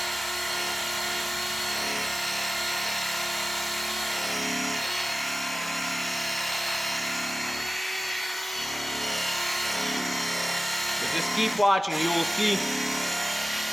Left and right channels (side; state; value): both; normal; correlation 0.96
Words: Just keep watching, you will see